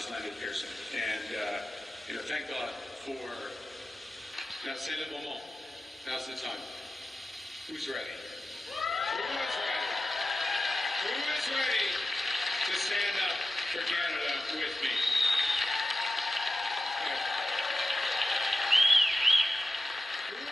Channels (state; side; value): normal; both; correlation 0.93